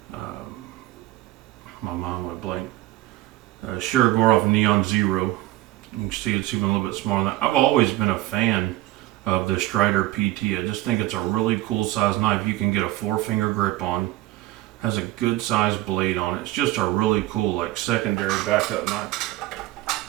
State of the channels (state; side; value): quieter; left; 17.0 dB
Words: My mind went blank. Shirogorov Neon Zero. You can see it's even a little bit smaller than that. I've always been a fan of the Strider PT. I just think it's a really cool size knife. You can get a 4-finger grip on. Has a good size blade on it. It's just a really cool like secondary backup knife.